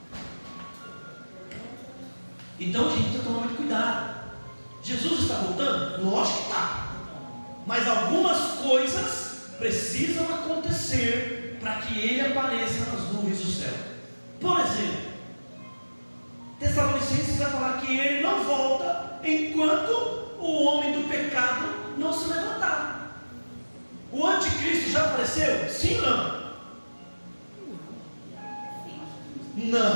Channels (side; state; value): both; inverted; correlation -1.00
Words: Então, gente, precisa tomar muito cuidado. Jesus está voltando? Lógico que está. Mas algumas coisas precisam acontecer para que Ele apareça nas nuvens do céu. Por exemplo, Tessalonicenses vai falar que Ele não volta enquanto o homem do pecado não se levantar. O anticristo já apareceu? Sim ou não?